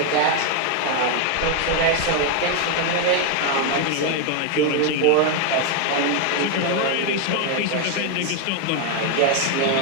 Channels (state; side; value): different; both; correlation 0.01